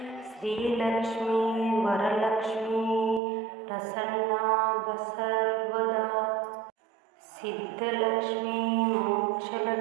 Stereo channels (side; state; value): left; drops out; at 3.2 s